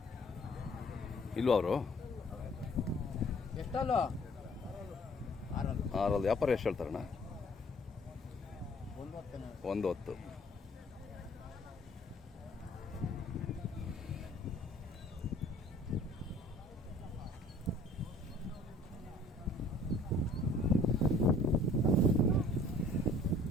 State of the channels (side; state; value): both; normal; correlation 0.55